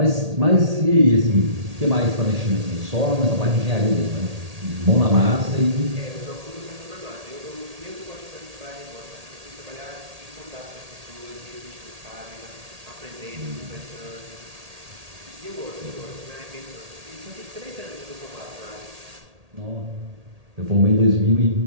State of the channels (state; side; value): late; left; 1.8 ms